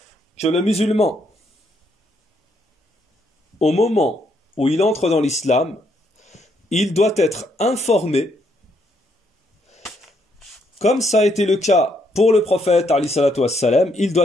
que le musulman, au moment où il entre dans l'islam, il doit être informé, comme ça a été le cas pour le prophète, alayhi salatu wassalam, il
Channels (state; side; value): normal; both; correlation 0.73